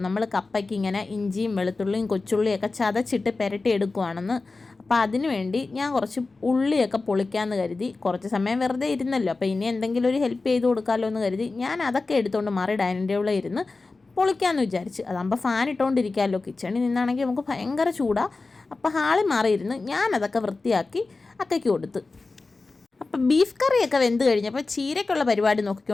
നമ്മൾ കപ്പയ്ക്ക് ഇങ്ങനെ ഇഞ്ചിയും വെളുത്തുള്ളിയും കൊച്ചുള്ളിയൊക്കെ ചതച്ചിട്ട് പുരട്ടി എടുക്കുവാണെന്ന്. അപ്പോൾ അതിന് വേണ്ടി ഞാൻ കുറച്ച് ഉള്ളിയൊക്കെ പൊളിക്കാമെന്ന് കരുതി. കുറച്ച് സമയം വെറുതെ ഇരുന്നല്ലോ, അപ്പോൾ ഇനി എന്തെങ്കിലും ഒരു ഹെൽപ്പ് ചെയ്ത് കൊടുക്കാമല്ലോ എന്ന് കരുതി ഞാൻ അതൊക്കെ എടുത്തുകൊണ്ട് മാറി ഡൈനിങ് ടേബിളിൽ ഇരുന്ന് പൊളിക്കാമെന്ന് വിചാരിച്ച്. അതാകുമ്പോൾ ഫാൻ ഇട്ടുകൊണ്ടിരിക്കാമല്ലോ. കിച്ചണിൽ നിന്നാണെങ്കിൽ നമുക്ക് ഭയങ്കര ചൂടാണ്. അപ്പോൾ ഹാളിൽ മാറിയിരുന്ന് ഞാനതൊക്കെ വൃത്തിയാക്കി അക്കയ്ക്ക് കൊടുത്ത്. അപ്പം ബീഫ് കറിയൊക്കെ വെന്ത് കഴിഞ്ഞപ്പോൾ ചീരയ്ക്കുള്ള പരിപാടി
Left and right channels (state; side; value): quieter; right; 3.7 dB